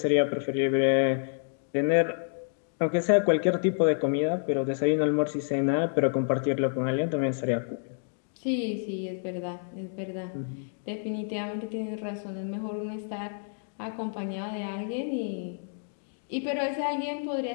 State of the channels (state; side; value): silent; right; digital silence